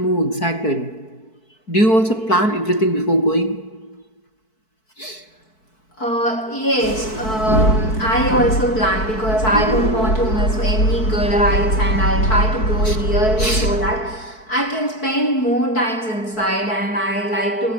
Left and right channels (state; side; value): late; right; 4.6 ms